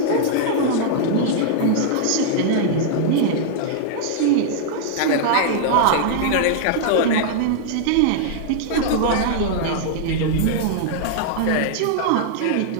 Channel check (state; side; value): different; both; correlation -0.01